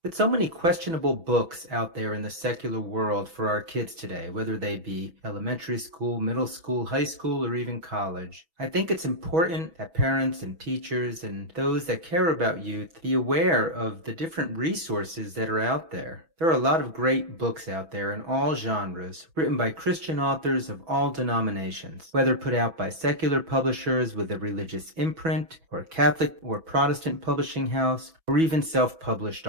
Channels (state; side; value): late; left; 6.1 ms